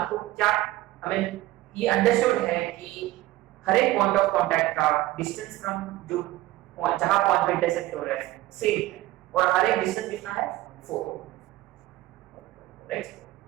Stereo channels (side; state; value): left; quieter; 16.8 dB